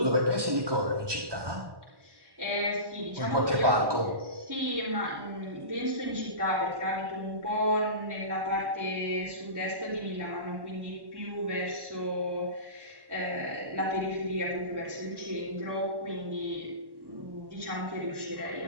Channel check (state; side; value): late; left; 1.1 ms